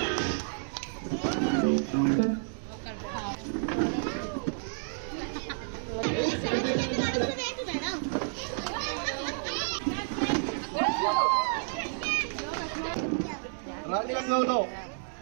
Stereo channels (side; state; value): left; silent; digital silence